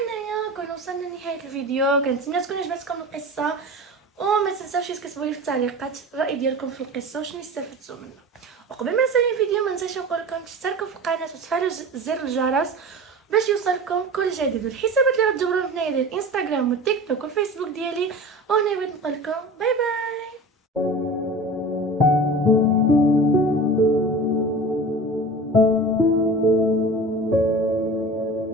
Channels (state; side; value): normal; both; correlation 0.35